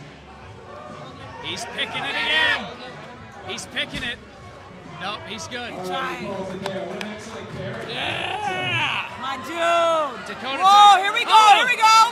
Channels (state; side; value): identical; both; correlation 1.00